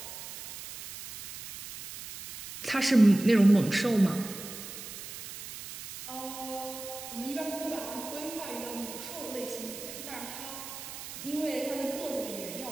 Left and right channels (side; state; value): right; noise; hiss, 11 dB below the sound